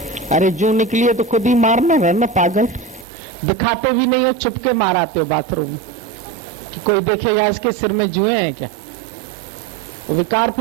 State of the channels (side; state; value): left; drops out; at 3.1 s